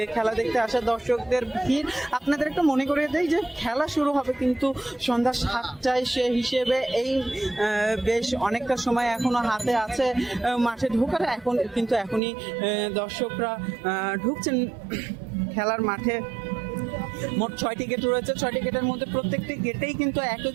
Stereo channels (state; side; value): drops out; left; at 12.2 s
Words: খেলা দেখতে আসা দর্শকদের ভিড়। আপনাদের একটু মনে করিয়ে দেই যে খেলা শুরু হবে কিন্তু সন্ধ্যা 7টায়। সে হিসেবে এই বেশ অনেকটা সময় এখনো হাতে আছে মাঠে ঢোকার। এখনই দর্শকরা ঢুকছেন খেলার মাঠে। মোট 6টি গেট রয়েছে। 6টি গেটের মধ্যে প্রত্যেকটি গেটেই কিন্তু একই